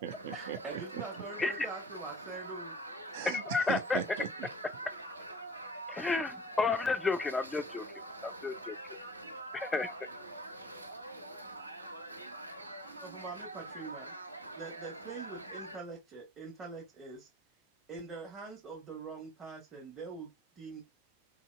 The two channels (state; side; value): normal; both; correlation 0.50